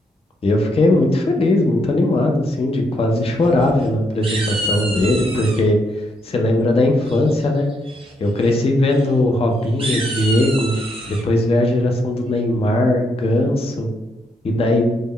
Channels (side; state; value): both; normal; correlation 0.76